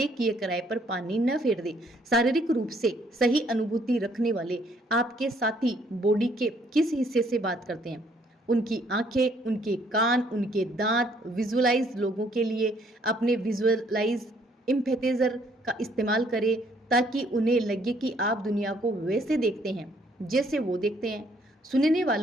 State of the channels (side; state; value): both; normal; correlation 0.65